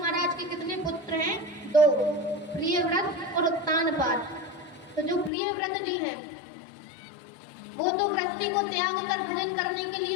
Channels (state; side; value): drops out; right; at 5.3 s